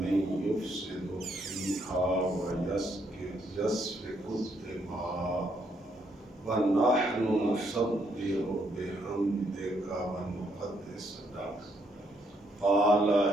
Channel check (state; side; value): normal; both; correlation 0.73